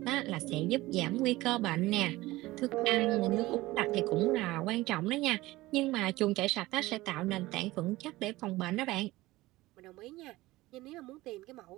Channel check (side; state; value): left; quieter; 18.8 dB